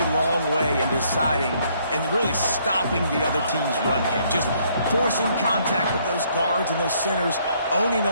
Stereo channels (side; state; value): both; inverted; correlation -0.67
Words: long way in deciding and really stopping the other team's run game. Just forcing contact with those guards and those centers, owning the